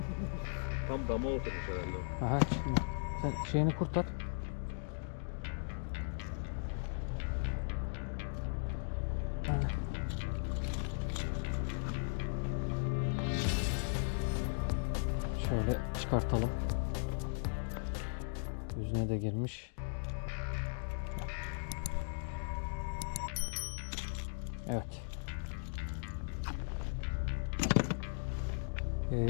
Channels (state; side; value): silent; right; digital silence